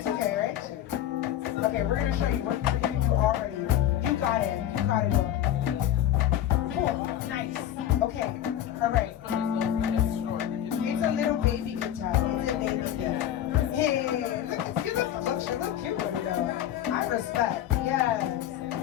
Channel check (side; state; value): right; quieter; 11.6 dB